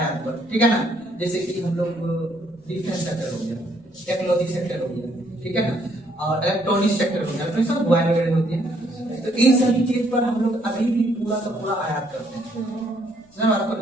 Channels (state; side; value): noise; left; rumble, 30 dB below the sound